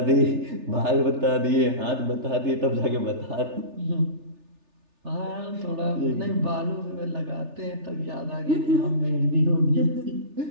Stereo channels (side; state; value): left; late; 3.3 ms